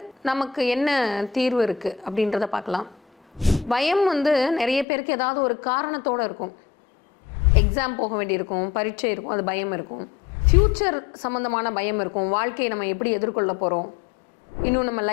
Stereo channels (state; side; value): drops out; right; at 4.9 s